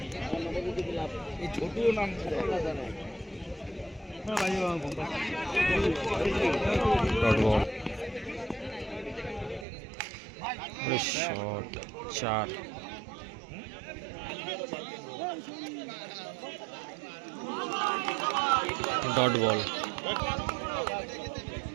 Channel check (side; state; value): left; drops out; at 9.7 s